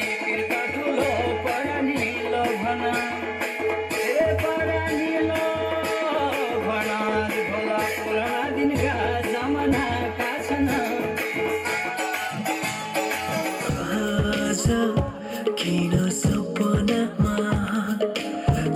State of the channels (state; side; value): identical; both; correlation 1.00